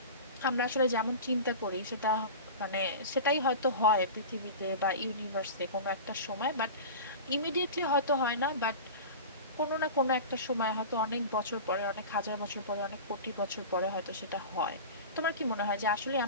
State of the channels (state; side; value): inverted; both; correlation -0.31